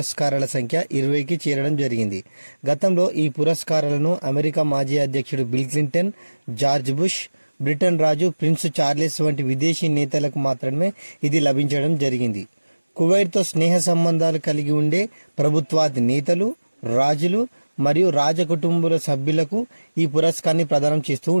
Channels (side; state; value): both; inverted; correlation -1.00